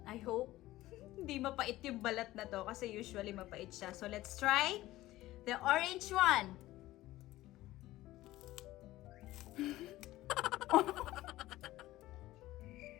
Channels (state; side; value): quieter; right; 16.5 dB